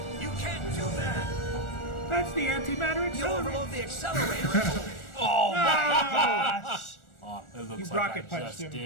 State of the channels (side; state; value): right; late; 1.4 ms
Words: You can't do that! That's the antimatter You accelerator! overload the accelerator! Oh my gosh! Oh, it looks You like rocket I punched just him.